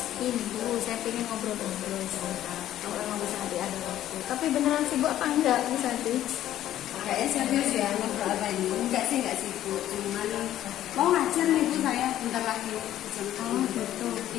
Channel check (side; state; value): right; quieter; 12.6 dB